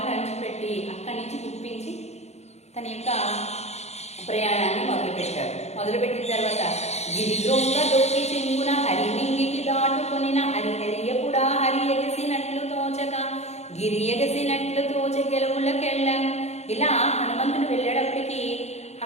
అణిచిపెట్టి అక్కడి నుంచి గుప్పించి తన యొక్క ప్రయాణాన్ని మొదలుపెట్టిన తర్వాత గిరిదొంగ దొక్కి చెంగున హరిమింగికి దాటుకొనిన హరిహరియపుడా హరి ఎగసినట్లు తోచక గిరి ఎగసినట్లు తోచ గెలవులకెళ్ళం. ఇలా హనుమంతుడు వెళ్ళేటప్పటికి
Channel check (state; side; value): late; right; 0.32 ms